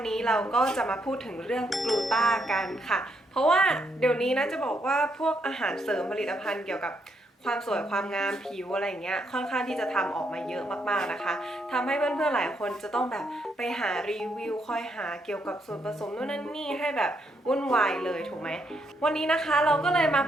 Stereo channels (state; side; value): normal; both; correlation 0.76